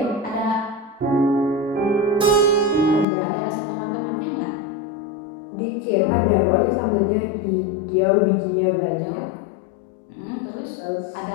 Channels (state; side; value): drops out; right; at 3.1 s